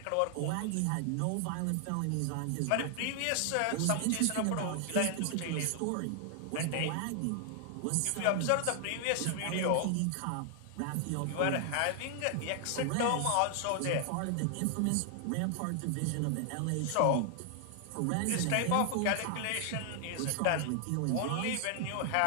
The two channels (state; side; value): different; both; correlation 0.00